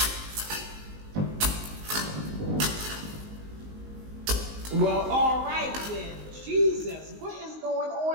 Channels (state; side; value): late; left; 19 ms